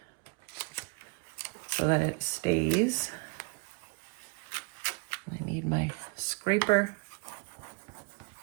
so that it stays. I need my scraper.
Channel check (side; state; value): left; quieter; 32.8 dB